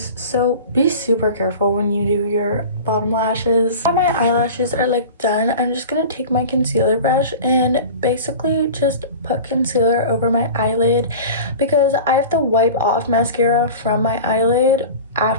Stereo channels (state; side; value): inverted; both; correlation -0.36